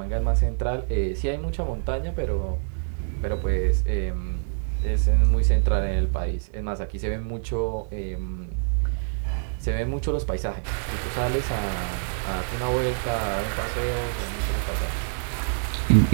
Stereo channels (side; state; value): left; silent; digital silence